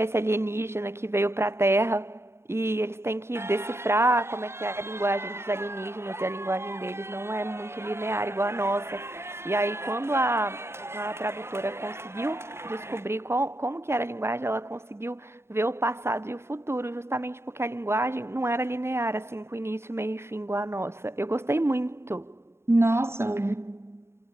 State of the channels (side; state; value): left; late; 0.12 ms